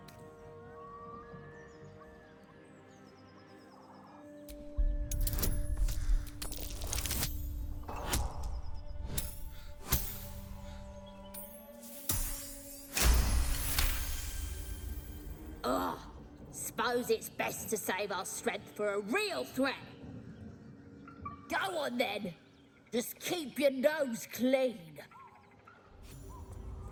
Suppose it's best to save our strength for a real threat. Go on then. Just keep your nose clean.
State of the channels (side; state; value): both; identical; correlation 1.00